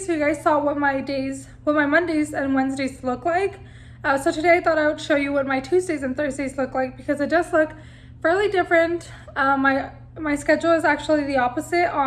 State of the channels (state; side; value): identical; both; correlation 1.00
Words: you guys saw what my Mondays and Wednesdays look like. So today I thought I would show you what my Tuesdays and Thursdays look like, because it does look fairly different. My schedule is actually the opposite